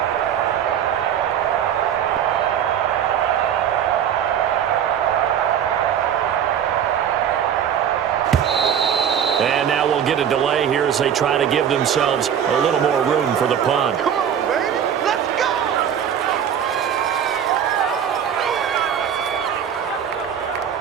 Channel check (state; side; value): quieter; left; 8.9 dB